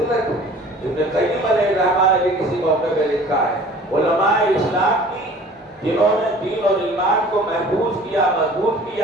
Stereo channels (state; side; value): normal; both; correlation 0.47